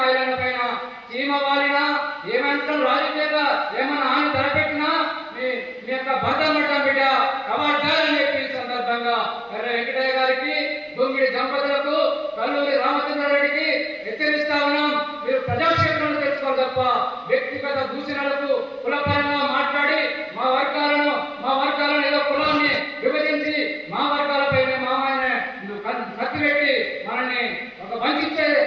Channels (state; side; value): identical; both; correlation 1.00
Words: ఐలాండ్ పైన చీమ వాలినా ఏమంటాం రాజకీయంగా ఏమన్నా ఆమె తలపెట్టినా మీ యొక్క భర్త పడతాం బిడ్డ కవాడ్డాలని చెప్పి సందర్భంగా ఎర్ర వెంకటయ్య గారికి, గుంగిడి దంపతులకు, కల్లూరి రామచంద్రారెడ్డికి హెచ్చరిస్తా ఉన్నాం. మీరు ప్రజాక్షేత్రంలో తెచ్చుకోవాలి తప్ప వ్యక్తిగత దూషణలకు కులపరంగా మాట్లాడి మా వర్గాలను ఏదో కులాన్ని విభజించి మా వర్గాలపైన మామయ్యనే కత్తి పెట్టి మనల్ని ఒక వంచే